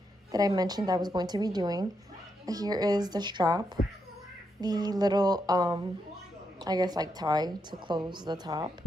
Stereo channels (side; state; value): both; normal; correlation 0.82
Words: that I mentioned I was going to be doing. Here is the strap, the little I guess like tie to close the top,